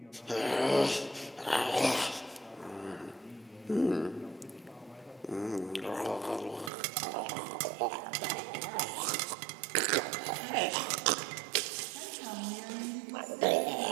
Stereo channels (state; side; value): drops out; left; at 6.7 s